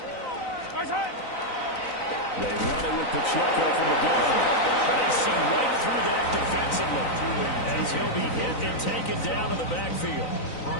They run it with Pacheco from the gun. They see right through that defensively as he'll be hit and taken down in the backfield.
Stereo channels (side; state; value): right; late; 3.9 ms